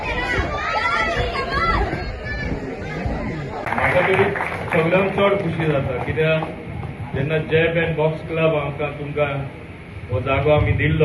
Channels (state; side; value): identical; both; correlation 1.00